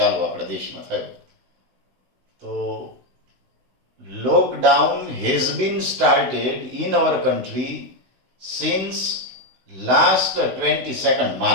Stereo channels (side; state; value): left; late; 16 ms